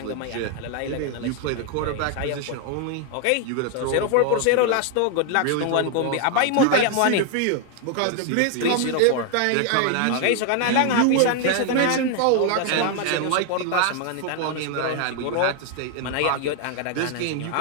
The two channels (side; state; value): both; different; correlation 0.01